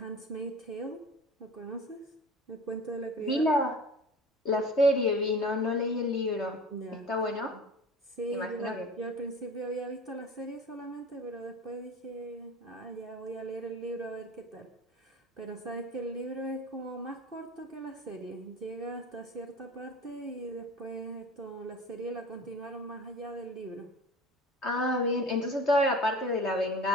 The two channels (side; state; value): both; normal; correlation 0.39